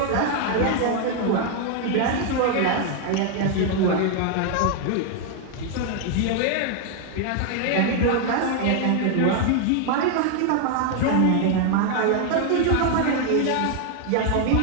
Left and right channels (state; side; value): different; both; correlation 0.01